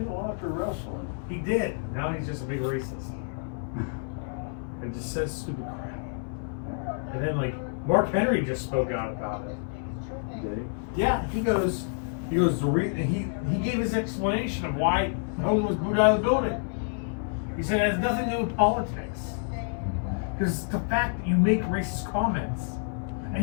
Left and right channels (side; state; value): right; silent; digital silence